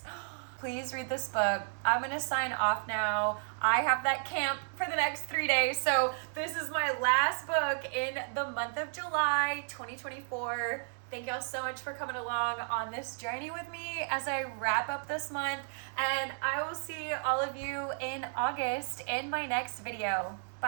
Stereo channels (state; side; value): silent; left; digital silence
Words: please read this book. I'm gonna sign off now. I have that camp for the next 3 days, so this is my last book in the month of July 2024. Thank y'all so much for coming along on this journey with me as I wrap up this month, and I will see all of you in August in my next video.